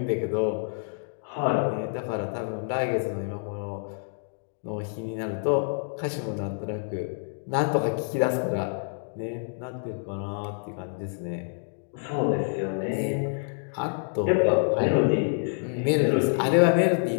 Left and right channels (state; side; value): silent; right; digital silence